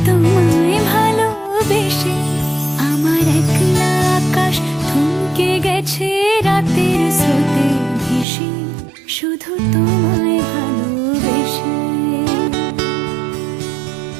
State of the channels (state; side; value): drops out; left; at 8.2 s